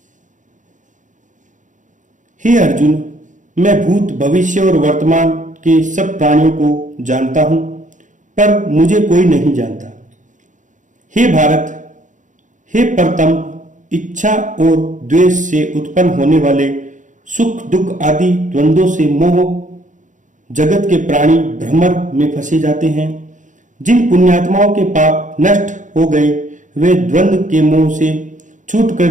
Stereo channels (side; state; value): left; late; 0.37 ms